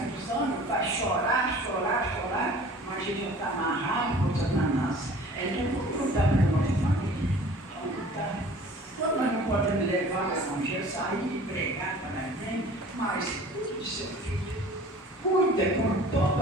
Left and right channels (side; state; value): both; normal; correlation 0.46